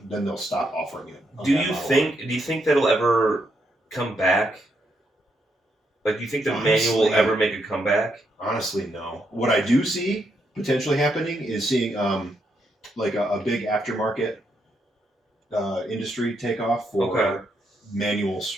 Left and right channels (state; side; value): normal; both; correlation 0.78